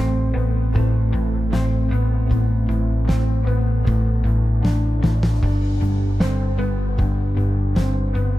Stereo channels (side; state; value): both; normal; correlation 0.94